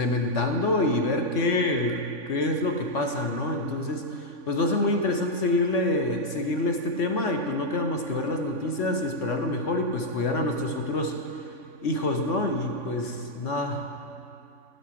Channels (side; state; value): right; late; 3.5 ms